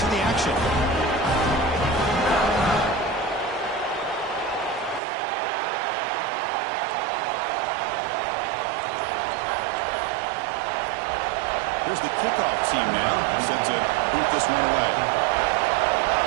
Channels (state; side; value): drops out; left; at 5.0 s